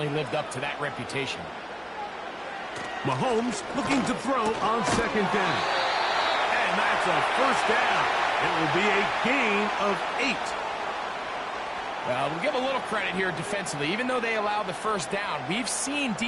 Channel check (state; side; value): identical; both; correlation 1.00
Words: lived up to that reputation. Mahomes looking to throw on second down. And that's a first down. It will be a gain of 8. Well, we'll give a little credit here defensively. Even though they allow the first down, we've seen